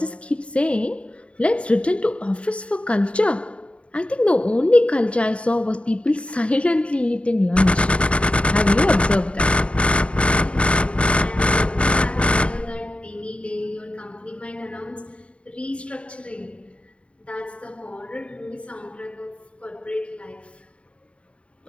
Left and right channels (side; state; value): right; late; 0.061 ms